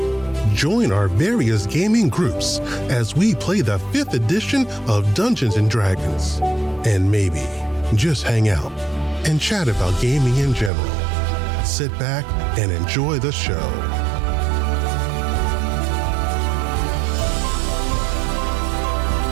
Join our various gaming groups as we play the 5th edition of Dungeons & Dragons. And maybe just hang out and chat about gaming in general. Sit back and enjoy the show.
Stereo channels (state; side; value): drops out; left; at 10.7 s